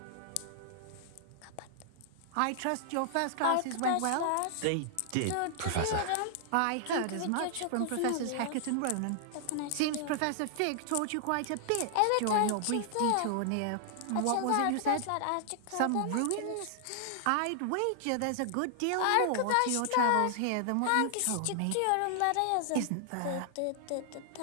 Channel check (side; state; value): both; different; correlation -0.01